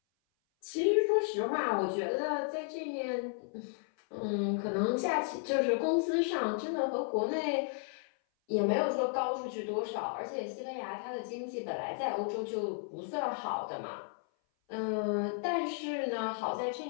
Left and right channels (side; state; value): right; silent; 55 dB below the other